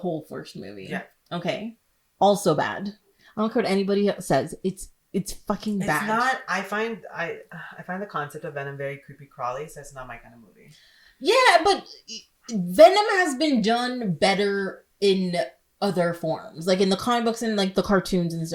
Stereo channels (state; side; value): identical; both; correlation 1.00